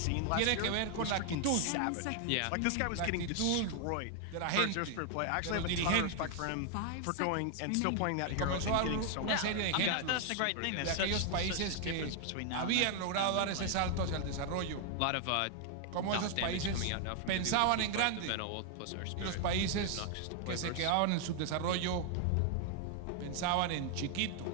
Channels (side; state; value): both; different; correlation 0.00